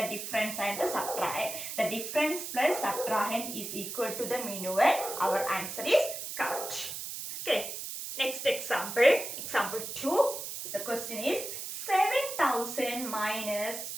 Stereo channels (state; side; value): noise; right; hiss, 7 dB below the sound